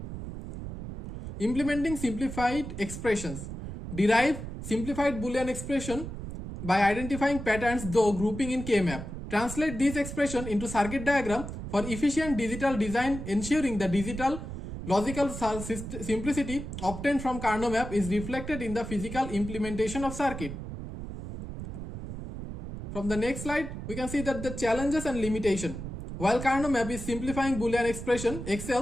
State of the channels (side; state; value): right; noise; rumble, 8 dB below the sound